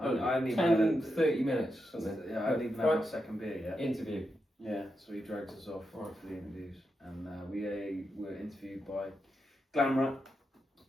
I hadn't even 10, had 30 minutes. Something. Yeah, I hadn't even had my second beer yet. Interview. Yeah, so he drags us off for the interviews, and we were interviewed by Glamrat,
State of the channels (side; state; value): both; normal; correlation 0.86